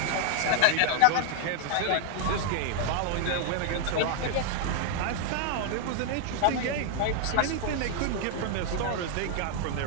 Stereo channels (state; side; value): different; both; correlation 0.00